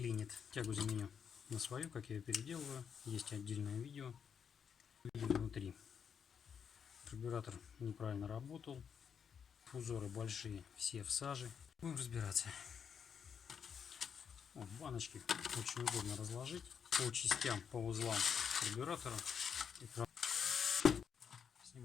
Тягу заменю на свою, как я ее переделываю. Есть отдельное видео. Видим внутри. Карбюратор неправильно работал. Узоры большие, все в саже. Будем разбираться. Вот, баночки очень удобно разложить по частям, по узлам карбюратора.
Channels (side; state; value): right; quieter; 7.2 dB